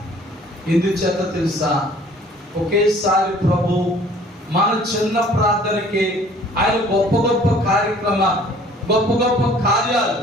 ఎందుచేత తెలుసా? ఒకేసారి ప్రభు మన చిన్న ప్రార్థనకి ఆయన గొప్ప గొప్ప కార్యక్రమాలు, గొప్ప గొప్ప కార్యాలు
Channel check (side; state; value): both; normal; correlation 0.53